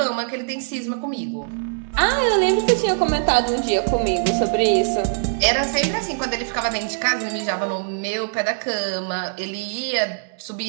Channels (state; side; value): silent; left; digital silence